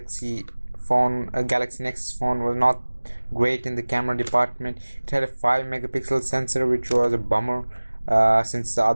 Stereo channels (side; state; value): both; inverted; correlation -1.00